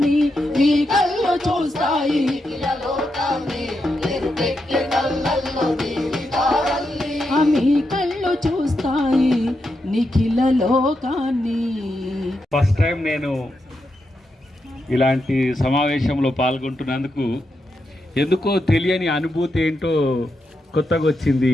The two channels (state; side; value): normal; both; correlation 0.85